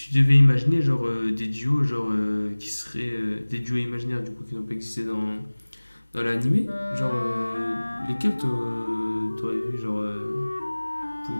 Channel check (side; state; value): both; inverted; correlation -1.00